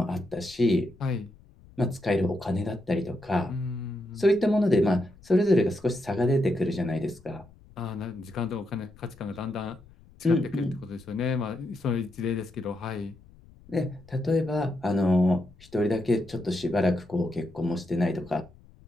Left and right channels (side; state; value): left; noise; rumble, 24 dB below the sound